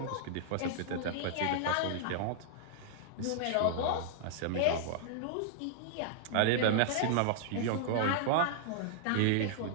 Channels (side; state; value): both; different; correlation -0.01